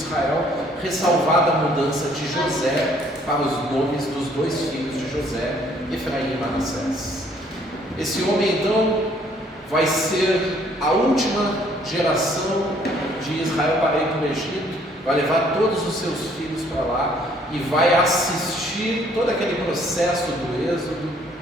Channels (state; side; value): normal; both; correlation 0.62